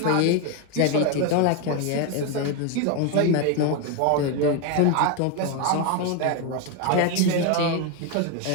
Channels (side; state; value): both; different; correlation 0.01